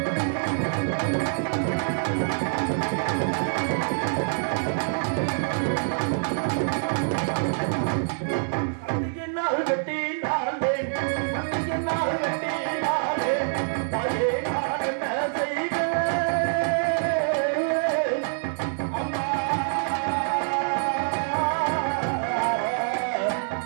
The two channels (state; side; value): silent; left; digital silence